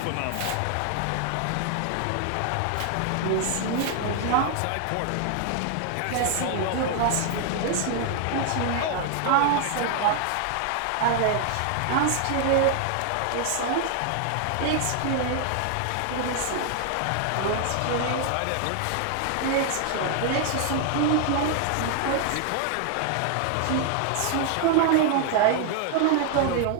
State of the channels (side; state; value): both; different; correlation 0.00